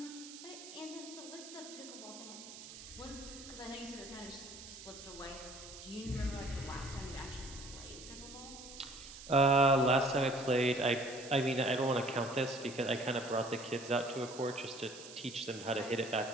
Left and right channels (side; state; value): right; noise; hiss, 14 dB below the sound